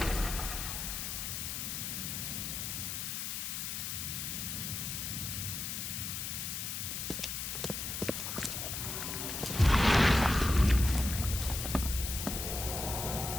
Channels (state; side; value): noise; left; hiss, 3 dB below the sound